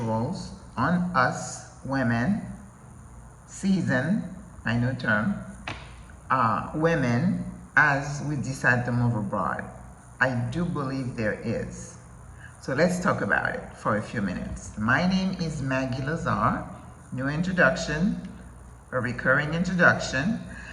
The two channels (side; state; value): both; identical; correlation 1.00